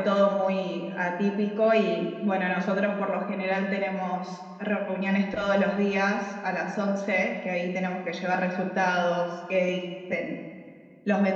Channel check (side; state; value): both; identical; correlation 1.00